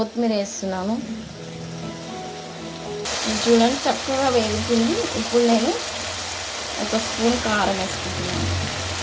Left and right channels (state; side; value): identical; both; correlation 1.00